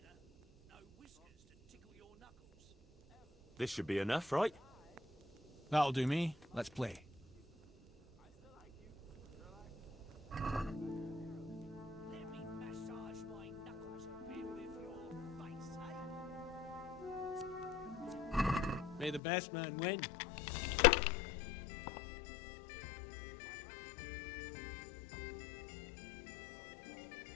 This should be enough, right? That'll do me. Let's play. Let me massage my knuckles a bit with your face, eh? May the best man win.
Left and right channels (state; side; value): drops out; right; at 19.2 s